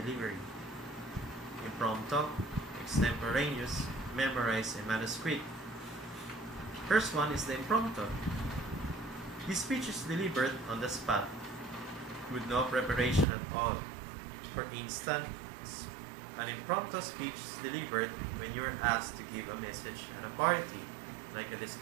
impromptu, extemporaneous, memorized, and manuscript. First one is the impromptu. This speech is delivered on the spot with no preparation at all. For instance, an impromptu speech is delivered when you are asked to give a message at a party, like a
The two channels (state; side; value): drops out; left; at 13.2 s